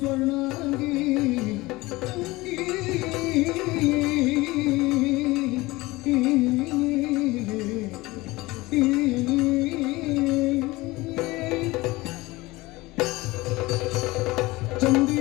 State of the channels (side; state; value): right; quieter; 20.8 dB